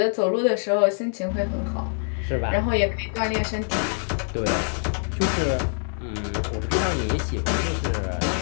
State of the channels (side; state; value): right; silent; digital silence